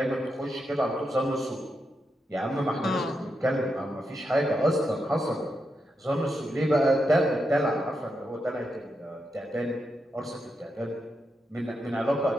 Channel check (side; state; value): both; normal; correlation 0.84